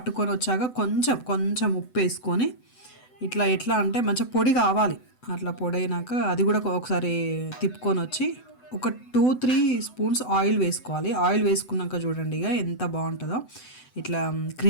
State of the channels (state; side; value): late; right; 7.9 ms